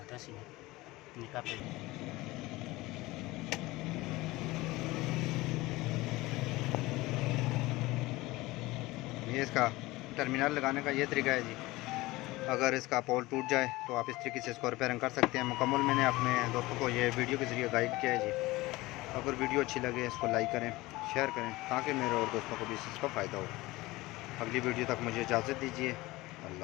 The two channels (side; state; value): right; quieter; 20.0 dB